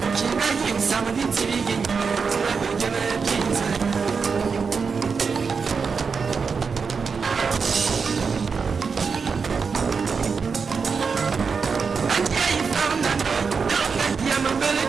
chinga yi Usami di tibi yenye Turabe yeme kinze Angia yi farna noy Delonga yi ya mabele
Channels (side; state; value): left; quieter; 5.4 dB